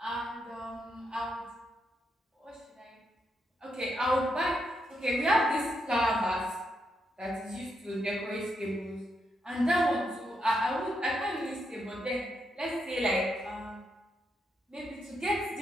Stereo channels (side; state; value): both; normal; correlation 0.81